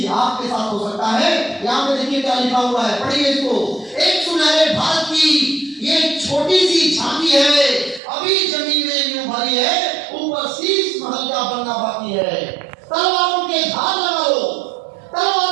आपके साथ हो सकता है। यहाँ पे देखिए क्या लिखा हुआ है, पढ़िए इसको। एक सुनहरे भारत की ये छोटी सी झांकी है, अभी जमीन में यूं भरी है, ऊपर शीश महल का बनना बाकी है। तलवारों के धार लगा लो,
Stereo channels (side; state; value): left; drops out; at 8.0 s